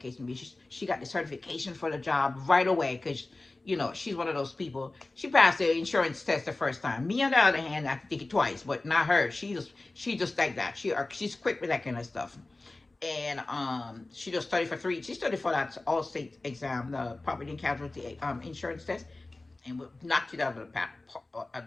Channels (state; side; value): quieter; right; 3.1 dB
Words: may be. She got the certification for the job right away because she's one of those people. She passed the insurance test the first time. Me, on the other hand, I have to take it twice, but not her. She just like that. She's quick with that kind of stuff. And she just studied for three. She studied for that all state exam, the property and casualty insurance test, and knocked it out of